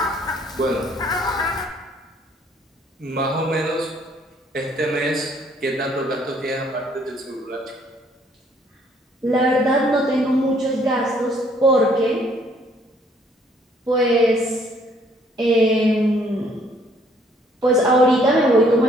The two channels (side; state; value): both; normal; correlation 0.64